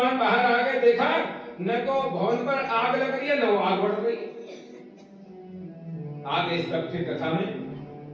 बाहर आ गए, देखा न तो भवन पर आग लग रही है, न वो आग बढ़ रही है। आगे सब फिर कथा में,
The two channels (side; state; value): both; identical; correlation 1.00